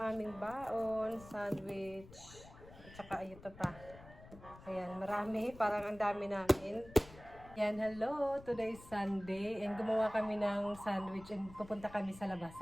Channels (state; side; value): noise; left; rumble, 19 dB below the sound